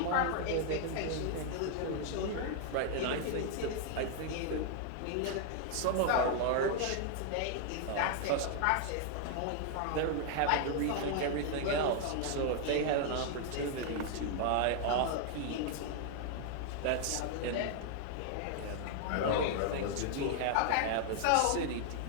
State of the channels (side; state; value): both; different; correlation 0.00